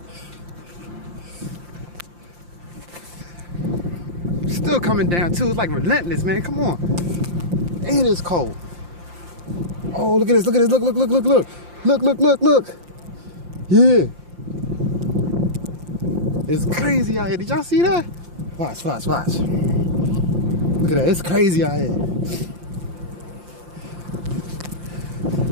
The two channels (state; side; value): late; left; 5.7 ms